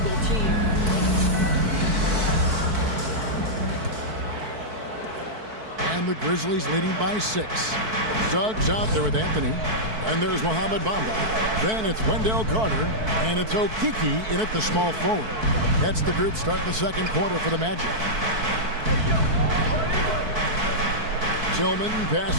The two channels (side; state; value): left; late; 4.6 ms